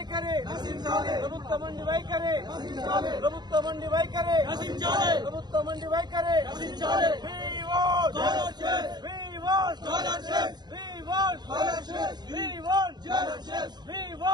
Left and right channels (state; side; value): late; left; 0.20 ms